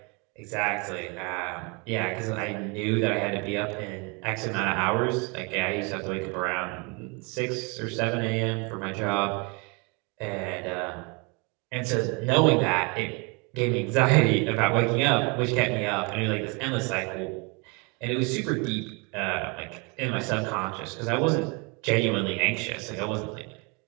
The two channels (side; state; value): left; quieter; 31.2 dB